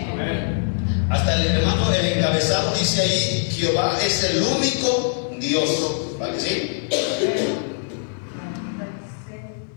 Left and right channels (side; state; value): right; silent; digital silence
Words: Amén. Hasta el hermano, el encabezado dice ahí, Jehová es el único Dios. ¿Vale que sí?